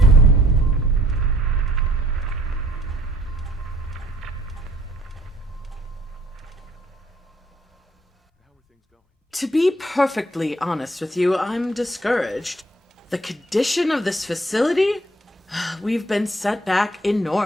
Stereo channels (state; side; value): normal; both; correlation 0.60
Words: To be perfectly honest with you, I'm discouraged. The condition of this facility? We've been set back